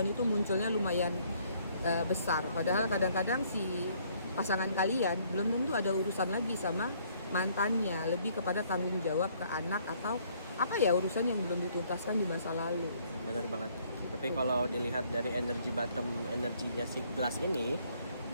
itu munculnya lumayan besar. Padahal kadang-kadang si pasangan kalian belum tentu ada urusan lagi sama mantannya, lebih kepada tanggung jawab ke anak atau apa ya urusan yang belum dituntaskan di masa lalu. Benar banget. Tapi kalau dilihat dari energi bottom, energinya si gelas ini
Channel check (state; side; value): inverted; both; correlation -0.64